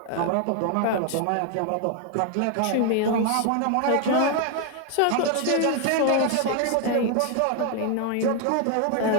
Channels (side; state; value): both; different; correlation 0.00